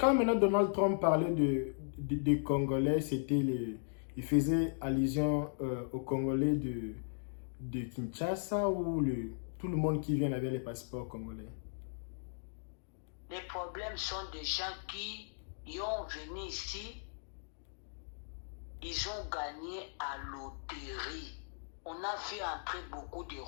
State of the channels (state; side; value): silent; right; digital silence